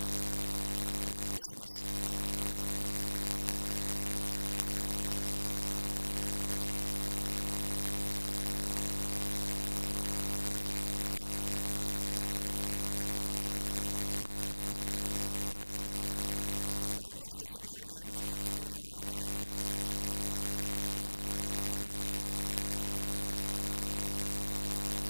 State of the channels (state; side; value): inverted; both; correlation -1.00